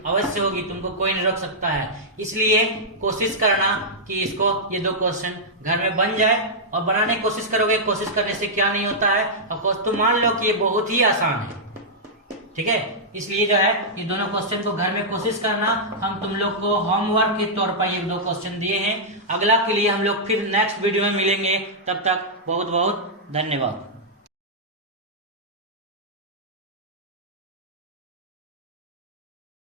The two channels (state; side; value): normal; both; correlation -0.09